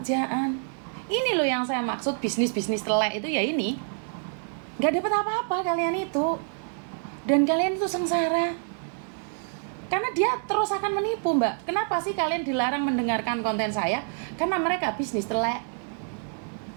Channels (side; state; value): left; silent; 59 dB below the other